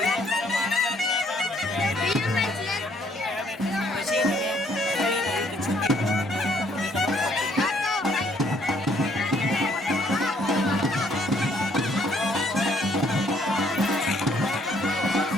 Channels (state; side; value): normal; both; correlation 0.66